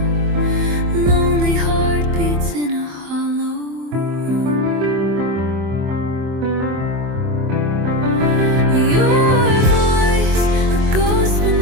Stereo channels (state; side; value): late; left; 24 ms